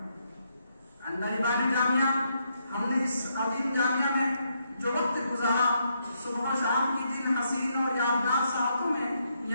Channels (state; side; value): inverted; both; correlation -0.77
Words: اندربانی جامعہ، ہم نے اس عظیم جامعہ میں جو وقت گزارا، صبح و شام کی جن حسین اور یادگار ساعتوں میں